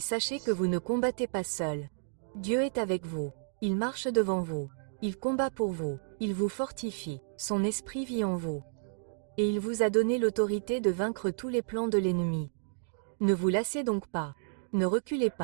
que vous ne combattez pas seul. Dieu est avec vous, il marche devant vous, il combat pour vous, il vous fortifie, son esprit vit en vous. Et il vous a donné l'autorité de vaincre tous les plans de l'ennemi. Ne vous lassez donc pas, ne reculez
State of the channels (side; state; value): left; silent; digital silence